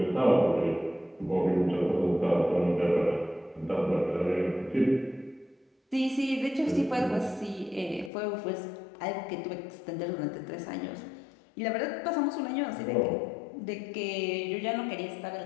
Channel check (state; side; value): drops out; right; at 8.1 s